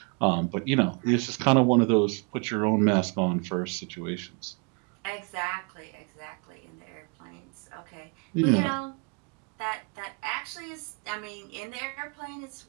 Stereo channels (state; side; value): quieter; left; 32.9 dB